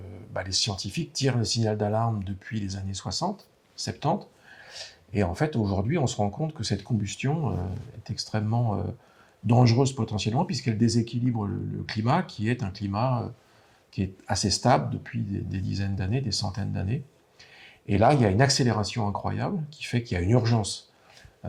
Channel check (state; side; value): identical; both; correlation 1.00